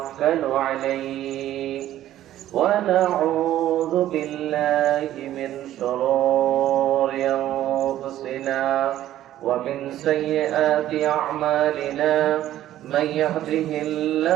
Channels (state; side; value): quieter; left; 13.0 dB